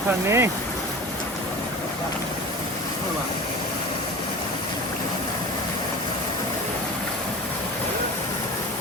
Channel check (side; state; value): both; normal; correlation 0.34